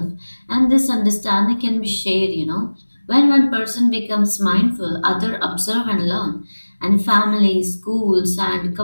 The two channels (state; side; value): inverted; both; correlation -1.00